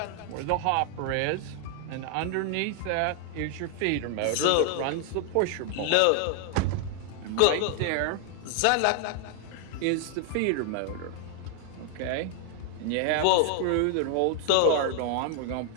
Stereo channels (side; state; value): both; different; correlation 0.00